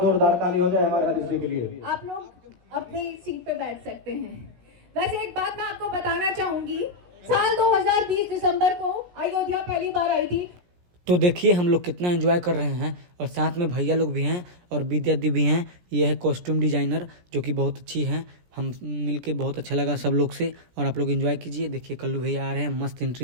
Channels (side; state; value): left; late; 17 ms